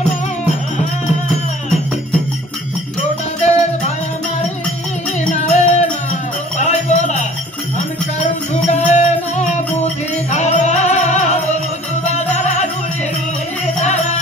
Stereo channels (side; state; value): both; normal; correlation 0.50